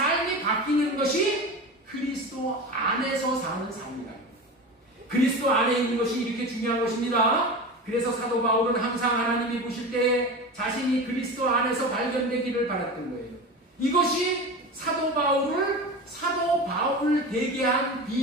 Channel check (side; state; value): both; normal; correlation 0.29